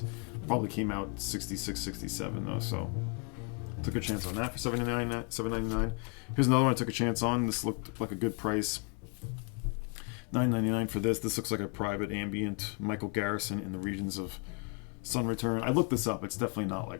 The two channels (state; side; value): quieter; right; 38.1 dB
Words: Probably came out 66, 67 though, so took a chance on that for $7.99. Here's another one I took a chance on. This looked like a good price. $9.99 for this. This looks like a private ambient Michael Garrison in the regions of Sun Return. I looked this up. It's definitely not